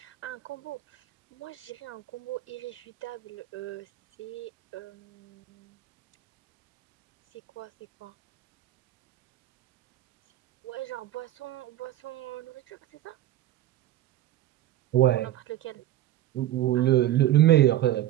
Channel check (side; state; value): left; quieter; 13.9 dB